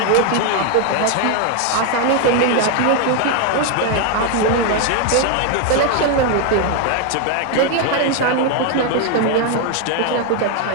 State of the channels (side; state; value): both; different; correlation 0.01